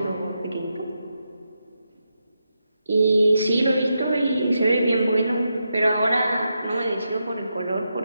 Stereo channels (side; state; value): both; inverted; correlation -0.85